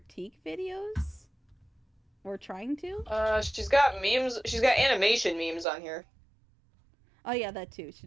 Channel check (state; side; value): drops out; left; at 5.7 s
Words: videos. Or trying to. She's got memes. She's got animation memes on here. Oh yeah, that too.